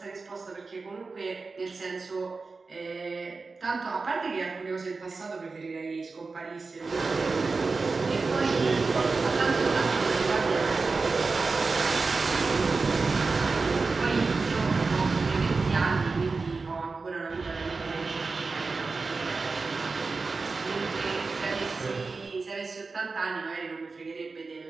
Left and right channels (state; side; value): quieter; left; 4.1 dB